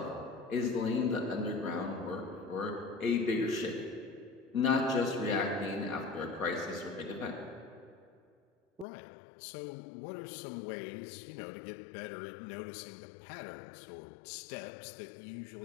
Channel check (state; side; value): drops out; right; at 8.8 s